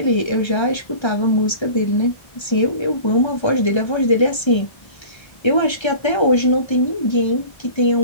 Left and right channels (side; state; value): right; late; 1.3 ms